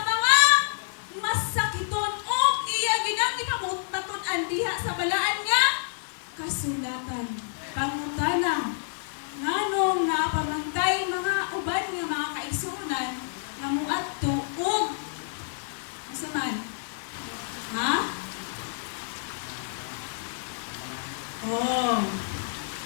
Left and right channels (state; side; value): silent; right; 59 dB below the other